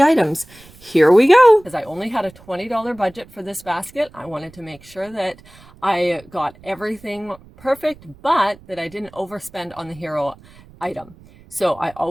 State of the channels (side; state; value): right; noise; rumble, 24 dB below the sound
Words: Here we go. As I only had a $20 budget for this basket, I wanted to make sure that I got everything perfect, but that I didn't overspend on the hero item. So I